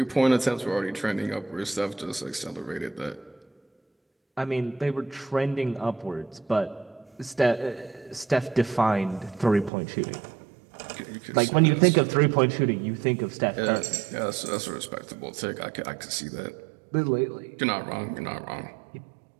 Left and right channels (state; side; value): drops out; left; at 9.7 s